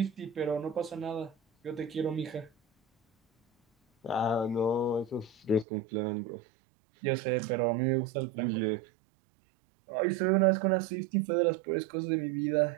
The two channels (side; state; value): left; drops out; at 5.7 s